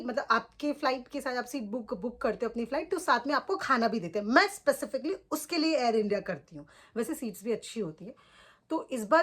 आपके फ़्लाइट के साथ आप सीट बुक करते हो अपनी फ़्लाइट, तो साथ में आपको खाना भी देते हैं। मैं स्पेसिफिकली उसके लिए एयर इंडिया करती हूँ। वैसे सीट्स भी अच्छी होती है। तो इस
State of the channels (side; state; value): both; identical; correlation 1.00